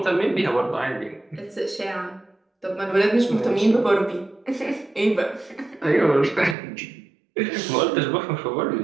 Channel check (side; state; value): left; drops out; at 6.6 s